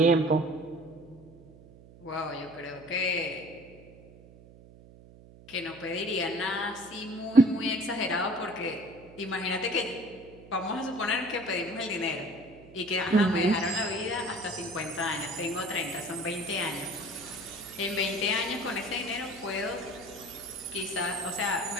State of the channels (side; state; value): right; noise; hum, 21 dB below the sound